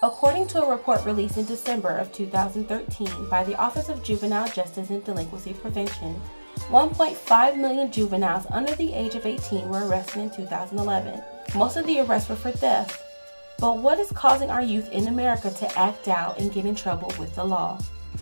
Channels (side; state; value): both; inverted; correlation -1.00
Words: According to a report released in December of 2013 by the Office of Juvenile Justice and Delinquency Prevention, 1.5 million juveniles under the age of 18 were arrested in 2011. Most of the arrests were for theft. But what is causing our youth in America to act out and get in trouble with the law?